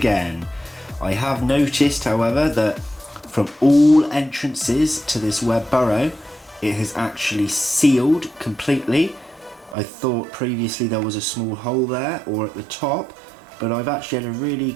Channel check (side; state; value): left; drops out; at 9.8 s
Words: I have noticed, however, that from all entrances to this web burrow, it has actually sealed completely. I thought previously there was a small hole there or at the top, but I've actually had a